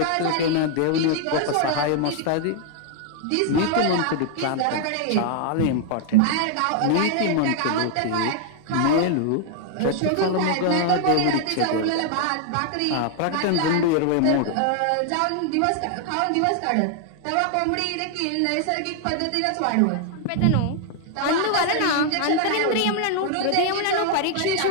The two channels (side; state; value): both; different; correlation 0.00